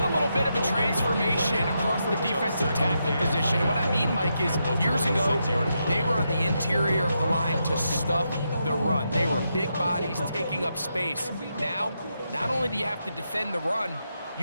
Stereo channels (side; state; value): both; inverted; correlation -0.83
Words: a little bit of a transformation across the defensive tackle position. And what I mean, Mike, is years ago, they were on the interior of the line to stuff the run. They were big bodies taking up space. Now, not only do you have to defend the run,